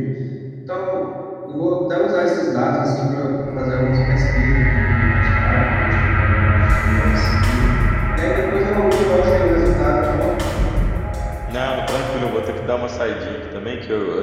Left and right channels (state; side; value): identical; both; correlation 1.00